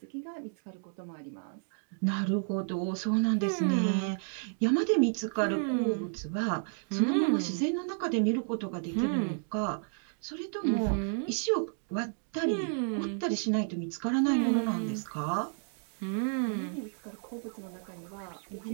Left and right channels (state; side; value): silent; left; 57 dB below the other